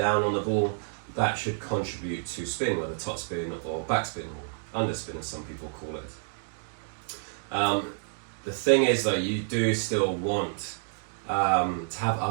on the ball, that should contribute to spin, whether top spin or backspin or underspin, as some people call it. The thing is, though, you do still want to have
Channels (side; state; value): left; silent; digital silence